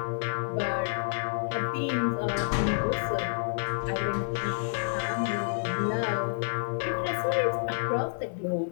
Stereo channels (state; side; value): silent; right; digital silence